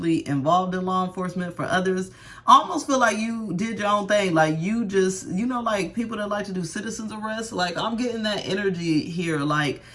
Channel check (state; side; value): identical; both; correlation 1.00